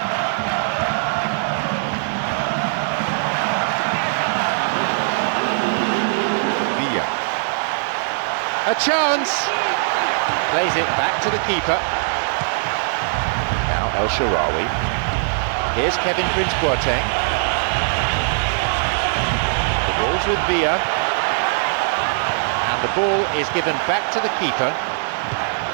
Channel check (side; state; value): left; silent; 60 dB below the other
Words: A chance! Plays it back to the keeper. Now El Shaarawy. Here's Kevin Prince Boateng. The ball's with Villa. And the ball is given back to the keeper.